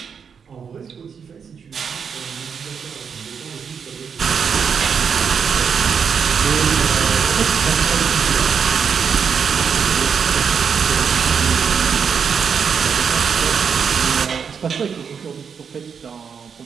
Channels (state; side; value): quieter; left; 6.6 dB